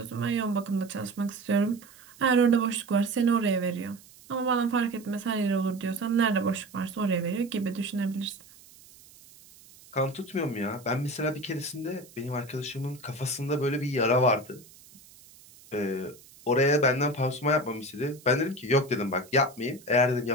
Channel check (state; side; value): noise; right; hiss, 23 dB below the sound